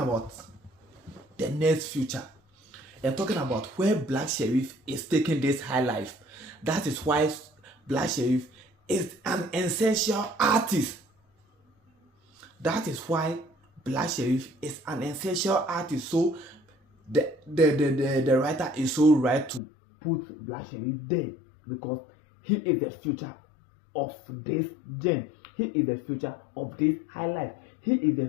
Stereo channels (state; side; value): drops out; right; at 19.6 s